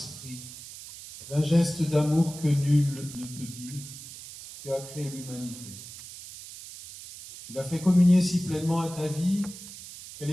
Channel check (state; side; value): noise; right; hiss, 14 dB below the sound